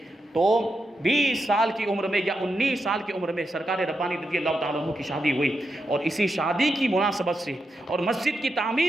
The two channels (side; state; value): both; normal; correlation 0.86